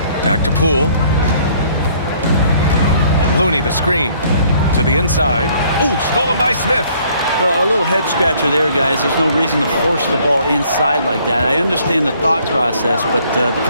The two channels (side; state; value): both; inverted; correlation -0.61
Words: Back to Poole. Looney, the screen. To the inside. Ooh, stolen by Smith. Well, a little head scratcher there, guys. There's no reason to force the ball inside like that. I understand the thought process, but the